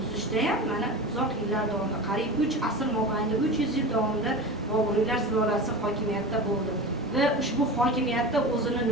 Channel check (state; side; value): normal; both; correlation 0.30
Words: tuzishda ham mana uzoq yillar davomida, qariyb 3 asr mobaynida 300 yil davomida Boburiylar sulolasi hokimiyatda bo'ldi va ushbu hokimiyatda o'zini